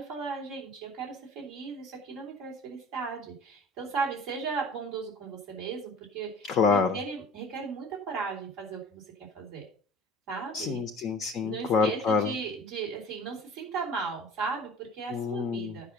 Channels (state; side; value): normal; both; correlation 0.44